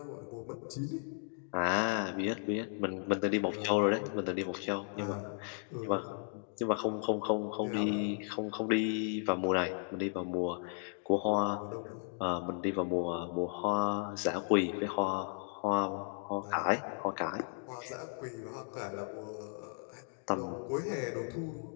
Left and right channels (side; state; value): right; silent; 54 dB below the other